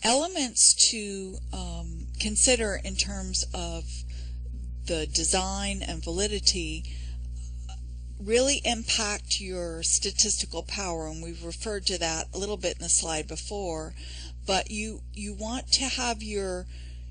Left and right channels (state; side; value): identical; both; correlation 1.00